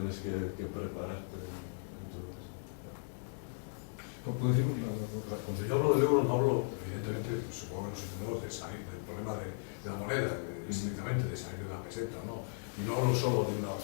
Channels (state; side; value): silent; right; 53 dB below the other